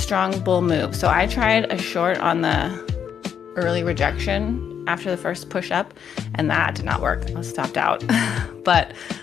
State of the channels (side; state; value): right; quieter; 8.1 dB